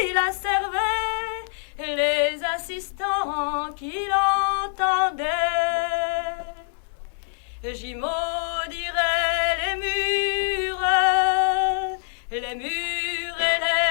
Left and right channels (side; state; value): right; silent; 62 dB below the other